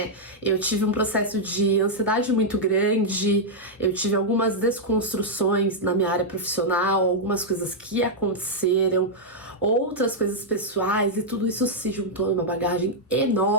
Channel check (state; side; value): normal; both; correlation -0.05